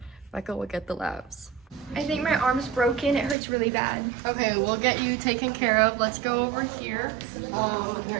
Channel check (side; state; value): left; drops out; at 3.4 s